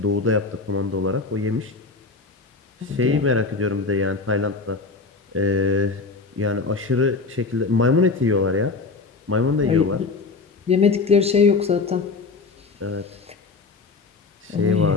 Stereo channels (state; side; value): quieter; right; 4.2 dB